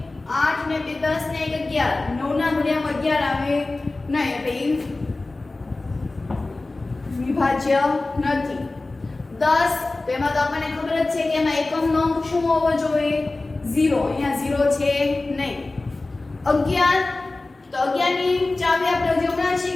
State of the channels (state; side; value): quieter; right; 3.2 dB